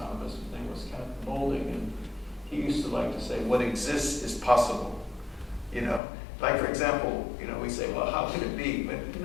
His name was Kenneth Molding, and he used to like to say, what exists is possible. You know, like for example, you know, we say, well, how could it be? But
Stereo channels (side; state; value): right; drops out; at 6.0 s